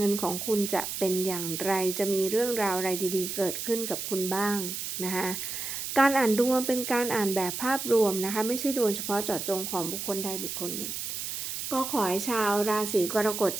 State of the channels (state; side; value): noise; right; hiss, 5 dB below the sound